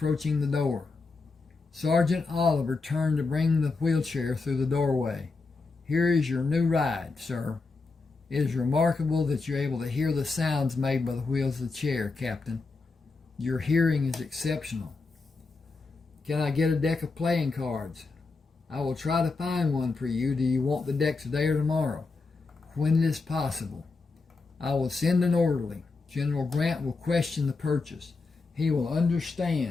the door. Sergeant Oliver turned to bring the wheelchair through the doorway. Here is your new ride, sir. It is remarkable that you're able to hear the sounds made by the wheels of the chair, Captain. Your hearing is exceptional. Can I get a deck of playing cards? I will try to find one for you. Do you want the deck today or tomorrow? When it is possible. I will send an orderly. General Grant will question the purchase. He will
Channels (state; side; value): quieter; right; 4.0 dB